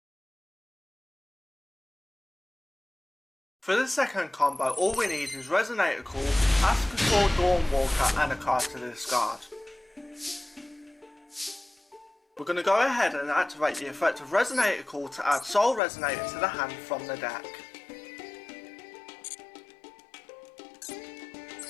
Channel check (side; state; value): right; drops out; at 15.8 s